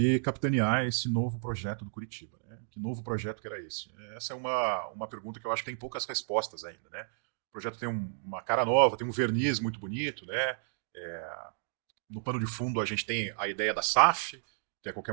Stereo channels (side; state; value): left; silent; digital silence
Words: capitanear esse novo projeto do Curitiba. Né? Que novo projeto que era esse? Essa é uma pergunta que eu acho que tem poucas respostas ainda. Né? O projeto tem uma cara nova, tem um verniz muito bonito. Né? No pano de fundo a gente tem a ideia da SAF, que a qualquer